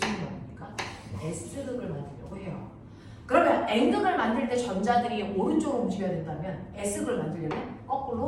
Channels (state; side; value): identical; both; correlation 1.00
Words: 일을 만듭니까? S극을 만들려고 해요. 그러면 N극을 만들 때 전자들이 오른쪽으로 움직여야 된다면 S극을 만들려면